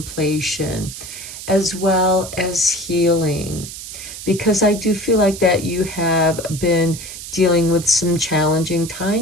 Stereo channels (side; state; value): right; noise; hiss, 11 dB below the sound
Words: as well as healing. Because I do feel like that you have been dealing with some challenging